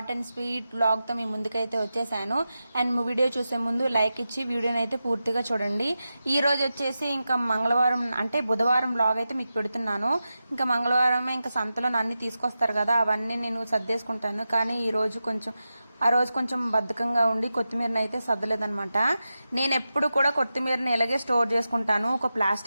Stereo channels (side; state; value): both; inverted; correlation -0.91